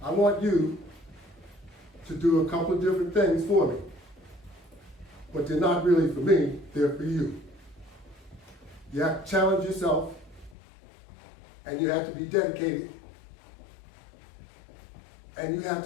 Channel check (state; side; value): drops out; right; at 10.6 s